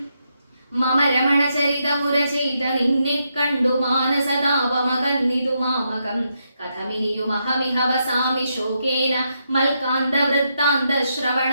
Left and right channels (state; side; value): inverted; both; correlation -0.81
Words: മമ രമണചരിതമുര ചെയ്ത നിന്നെ കണ്ടു മാനസതാപമകന്നിതു മാമകം. കഥമിനിയുമഹമിഹ വസാമി ശോകേന മൽക്കാന്ത വൃത്താന്ത ശ്രവണ